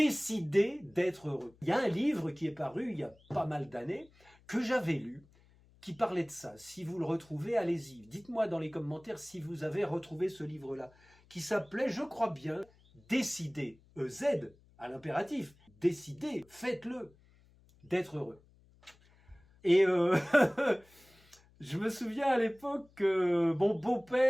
d'être heureux. Il y a un livre qui est paru il y a pas mal d'années, que j'avais lu, qui parlait de ça. Si vous le retrouvez, allez-y. Dites-moi dans les commentaires si vous avez retrouvé ce livre-là, qui s'appelait, je crois bien, Décider, EZ, à l'impératif. Décidez, faites-le, d'être heureux. Et je me souviens à l'époque que mon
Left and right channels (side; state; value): left; noise; hum, 29 dB below the sound